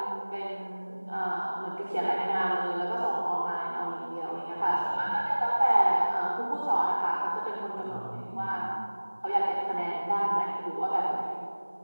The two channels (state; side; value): inverted; both; correlation -1.00